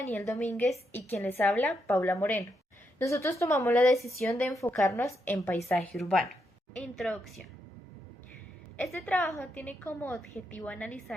Domínguez y quien les habla, Paula Moreno. Nosotros tomamos la decisión de enfocarnos en paisaje urbano. Introducción. Este trabajo tiene como objetivo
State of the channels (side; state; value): both; normal; correlation 0.81